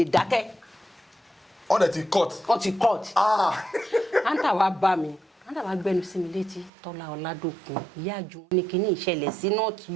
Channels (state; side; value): drops out; left; at 6.7 s